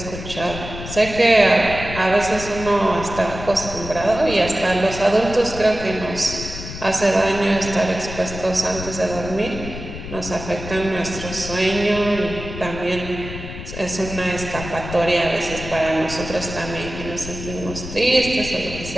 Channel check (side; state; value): left; noise; rumble, 10 dB below the sound